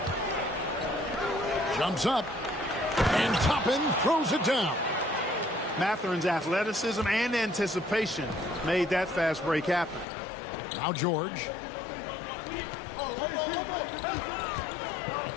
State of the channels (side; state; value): right; drops out; at 10.1 s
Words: Jumps up. And Toppin throws it down. Mathurin's athleticism and anticipation made that fast break happen. Now George.